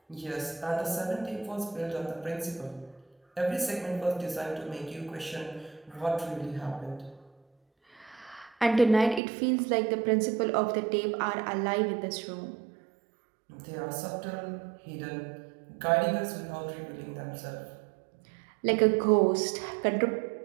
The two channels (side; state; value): left; drops out; at 9.2 s